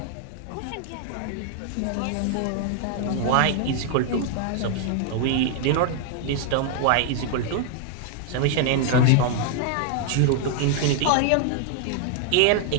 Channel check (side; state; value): both; different; correlation 0.00